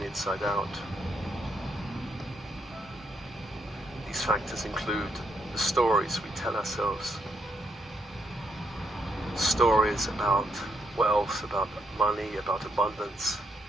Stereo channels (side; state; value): both; normal; correlation 0.77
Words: the inside out. These factors include the stories we tell ourselves. Stories about wealth, about money, about abundance.